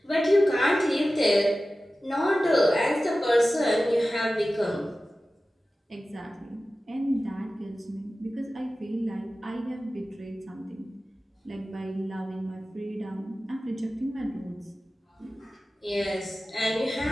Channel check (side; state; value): both; normal; correlation 0.95